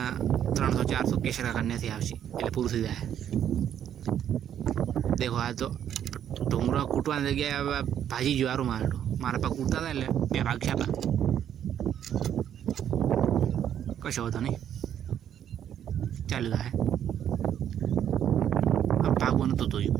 300-400 केसरा करने से आवश्यक એટલે પૂરું થઈ જાય। देखो आ तो ढोंगरो कूटवा जगह भाजी ज्वारू मारो मारा पा कूटता था એટલે બે ભાગ છાપા કશો હતો નહીં ચાલી જાય। अब भागवन तो धोયું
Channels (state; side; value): quieter; left; 9.8 dB